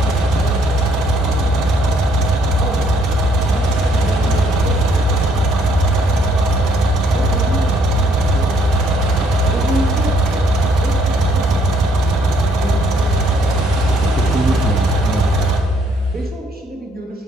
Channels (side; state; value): both; normal; correlation 0.67